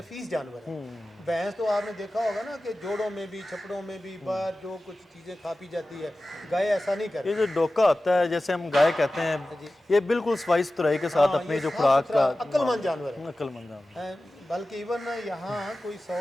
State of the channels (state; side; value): normal; both; correlation 0.95